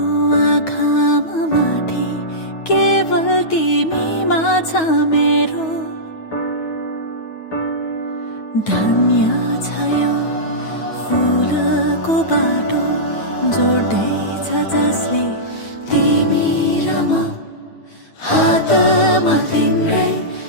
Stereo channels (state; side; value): late; right; 9.3 ms